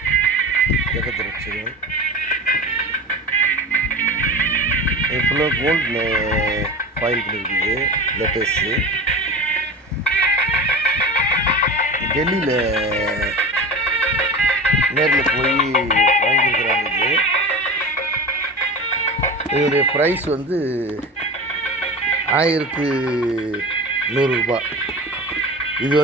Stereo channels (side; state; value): both; normal; correlation 0.30